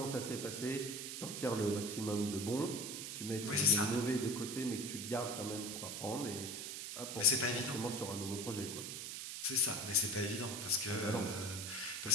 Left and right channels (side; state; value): right; noise; hiss, 6 dB below the sound